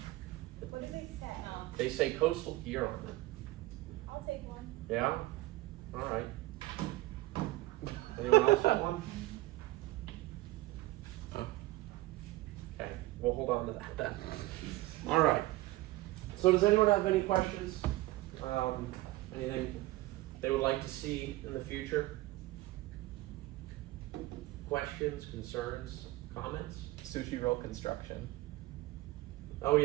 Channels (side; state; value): left; quieter; 18.4 dB